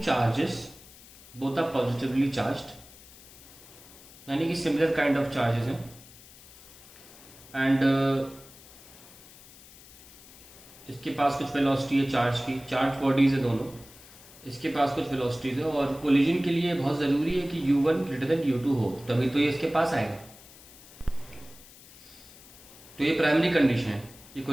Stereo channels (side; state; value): left; noise; hiss, 21 dB below the sound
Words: both are positively charged, यानी कि सिमिलर काइंड ऑफ चार्जेस हैं, एंड इसके पास कुछ वेलोसिटी है चार्ज की, चार्ज बॉडीज है दोनों, इसके पास कुछ वेलोसिटीज है, और कोलिजन के लिए बहुत ज़रूरी है कि u1 ग्रेटर देन u2 हो, तभी तो ये इसके पास आएगा। तो ये प्राइमरी कंडीशन है कि